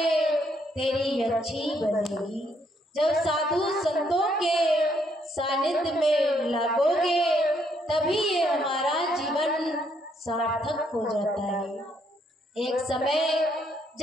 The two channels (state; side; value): normal; both; correlation 0.72